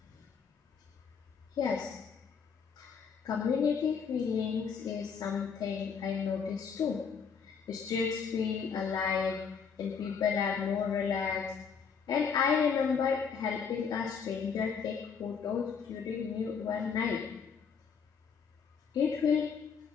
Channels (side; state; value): right; quieter; 6.3 dB